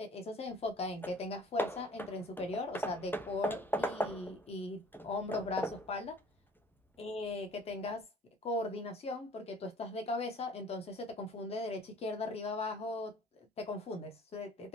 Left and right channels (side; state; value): both; normal; correlation 0.51